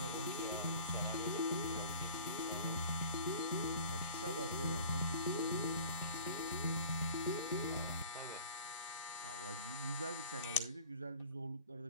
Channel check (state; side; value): inverted; both; correlation -0.44